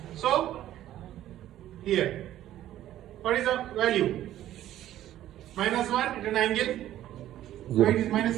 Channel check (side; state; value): left; quieter; 13.0 dB